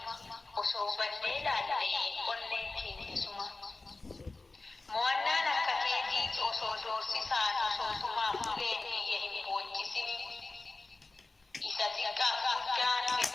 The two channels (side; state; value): right; quieter; 3.4 dB